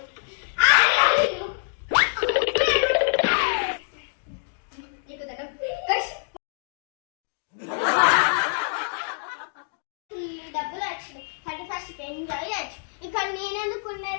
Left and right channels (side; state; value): right; silent; digital silence